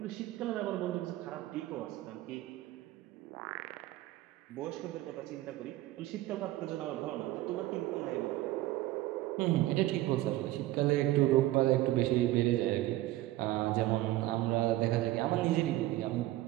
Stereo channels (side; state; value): left; quieter; 16.5 dB